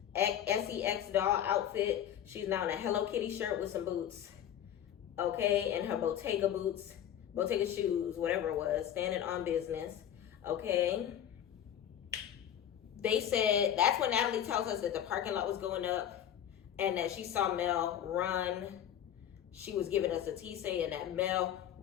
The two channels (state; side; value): quieter; right; 10.2 dB